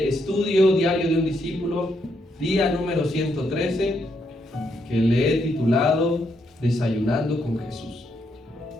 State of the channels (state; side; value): normal; both; correlation 0.77